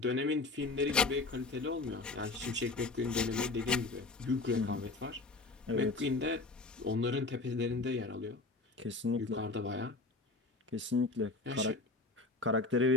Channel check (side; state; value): right; quieter; 3.5 dB